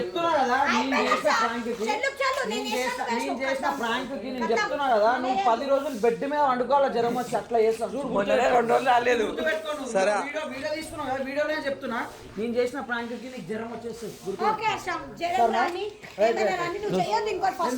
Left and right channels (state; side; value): identical; both; correlation 1.00